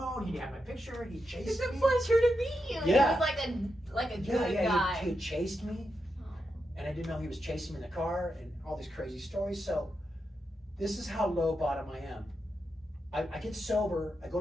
He had my picture. He chased It's a me. pleasure to meet you. Yeah. He was like a good guy. He had chased me, and I didn't know he was chasing me in the car, and all these crazy stories. So this is how low bottom I am. I get sober. I go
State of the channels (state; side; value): normal; both; correlation 0.86